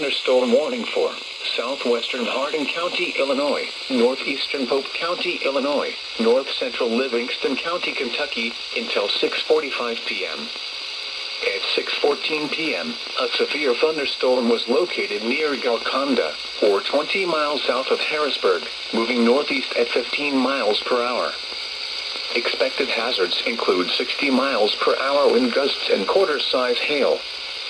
warning for southwestern Hardin County, Illinois, northeastern Pope County, Illinois, north-central Livingston County, Kentucky, until 6:45 p.m. At 6:14 p.m., a severe thunderstorm was located near Golconda, or 20 miles south of Harrisburg, moving northeast at 15 miles per hour. Expected hazards include 60 miles per hour wind gusts and quarter-size hail.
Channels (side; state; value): both; identical; correlation 1.00